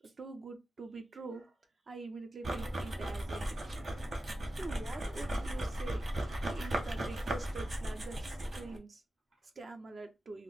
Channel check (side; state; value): both; normal; correlation 0.92